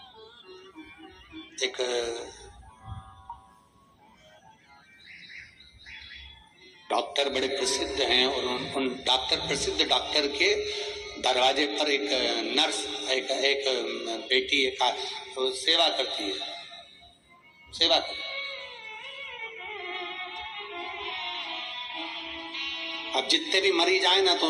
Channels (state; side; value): identical; both; correlation 1.00